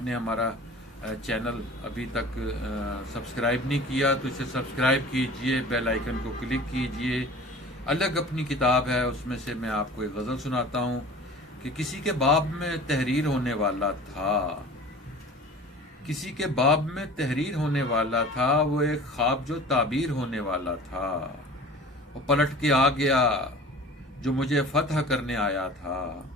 हमारा चैनल अभी तक सब्सक्राइब नहीं किया तो इसे सब्सक्राइब कीजिए, बेल आइकन को क्लिक कीजिए। अलग अपनी किताब है, उसमें से मैं आपको एक गज़ल सुनाता हूँ कि किसी के बाब में तहरीर होने वाला था, किसी के बाब में तहरीर होने वाला था, वो एक ख्वाब जो ताबीर होने वाला था। वो पलट के आ गया जो मुझे फतह करने आया था,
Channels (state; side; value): normal; both; correlation 0.41